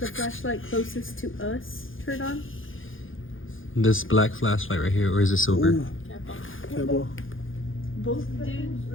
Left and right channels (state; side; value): late; right; 0.58 ms